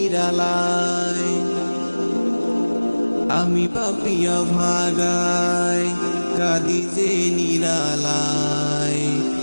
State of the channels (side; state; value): both; inverted; correlation -1.00